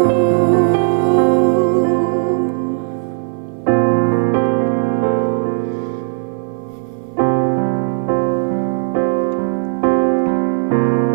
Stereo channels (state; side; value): silent; left; 59 dB below the other